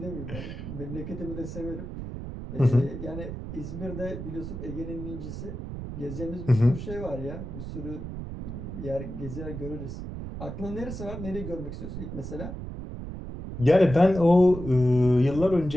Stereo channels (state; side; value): noise; right; rumble, 8 dB below the sound